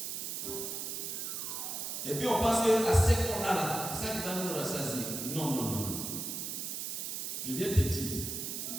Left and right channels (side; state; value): right; noise; hiss, 4 dB below the sound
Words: Et puis on pense que l'assiette qu'on a là, c'est ça qui va nous rassasier. Non, non, non, non. Je viens te dire